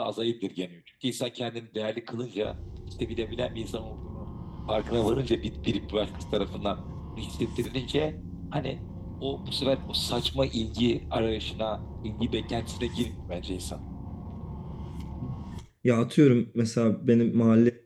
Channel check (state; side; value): identical; both; correlation 1.00